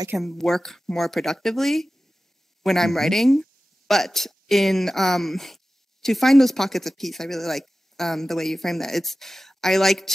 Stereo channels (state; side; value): normal; both; correlation 0.95